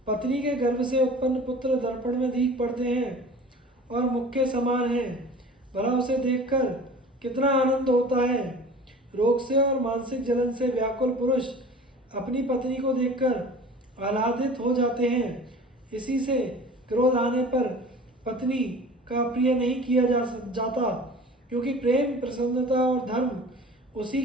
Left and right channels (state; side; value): normal; both; correlation 0.42